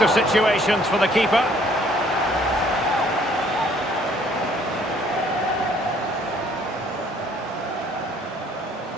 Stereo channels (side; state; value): both; normal; correlation 0.61